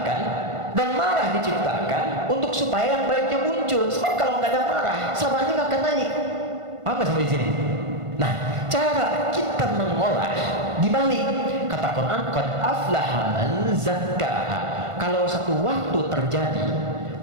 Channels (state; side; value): late; left; 1.5 ms